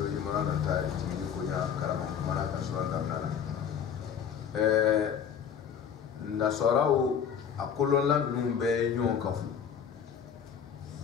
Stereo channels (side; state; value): right; quieter; 7.8 dB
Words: imran ta tini kunya karama mara ka surata nana nasarau akolonla numbe nyon kafu